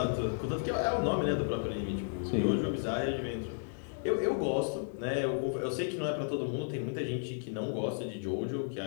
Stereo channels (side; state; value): right; silent; digital silence